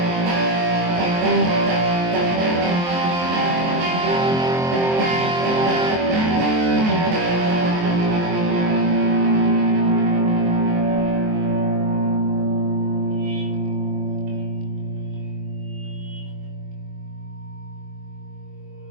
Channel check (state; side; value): late; left; 23 ms